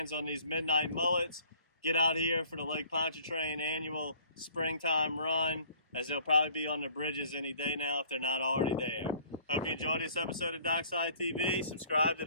on these midnight mullets. Get out here for the Lake Pontchartrain annual springtime run, as they'll probably be on the bridges any day now if they're not already there. Hope you enjoyed this episode of DockSide TV. Subscribe to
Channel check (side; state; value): both; inverted; correlation -0.54